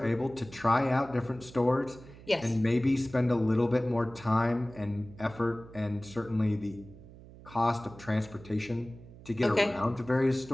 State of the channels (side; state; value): right; noise; hum, 19 dB below the sound